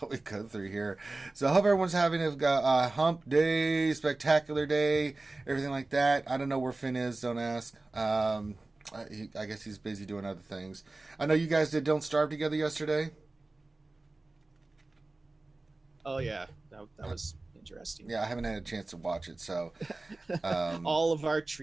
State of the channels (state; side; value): quieter; left; 3.1 dB